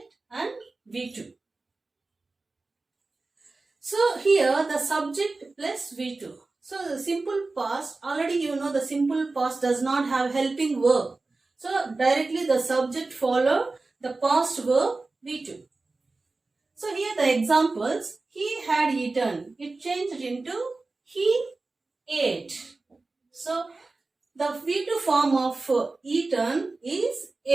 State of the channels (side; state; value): left; quieter; 3.5 dB